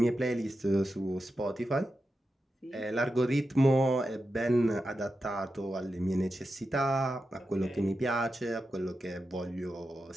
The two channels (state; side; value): normal; both; correlation 0.90